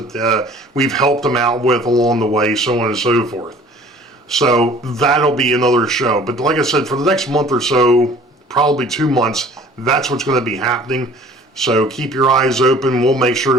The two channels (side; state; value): both; normal; correlation 0.50